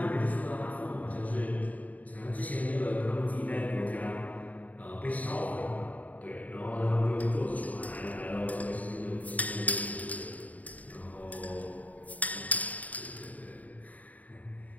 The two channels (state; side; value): late; right; 0.073 ms